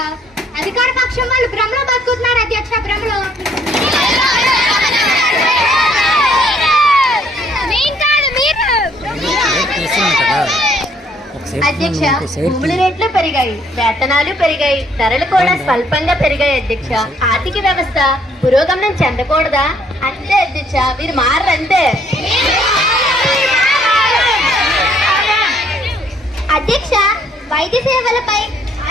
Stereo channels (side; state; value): both; normal; correlation 0.65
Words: అధికార పక్షం వాళ్ళు భ్రమలో బతుకుతున్నారు అధ్యక్ష, భ్రమలో. అధ్యక్ష, భూముల రేట్లు పెరిగాయి, వేతనాలు పెరిగాయి, ధరలు కూడా స్వల్పంగా పెరిగాయి అధ్యక్ష. ఆర్థిక వ్యవస్థ పురోగమనం చెందకూడదా? అంతే అధ్యక్ష, మీరు మారంతే. అధ్యక్ష, వైద్య సేవలపై,